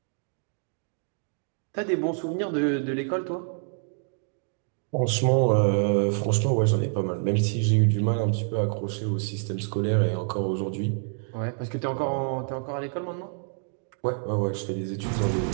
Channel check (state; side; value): silent; left; 60 dB below the other